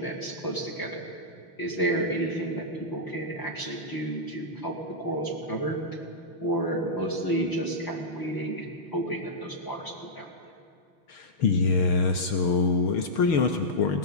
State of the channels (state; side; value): late; right; 6.5 ms